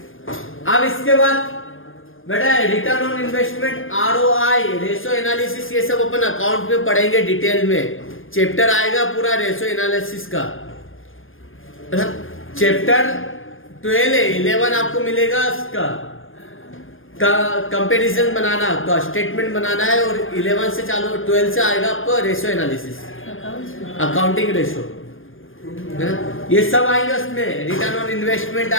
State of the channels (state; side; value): late; right; 0.59 ms